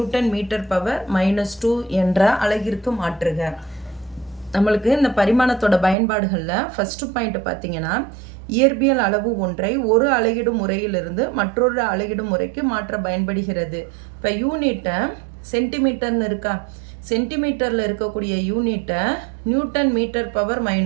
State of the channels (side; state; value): left; drops out; at 6.0 s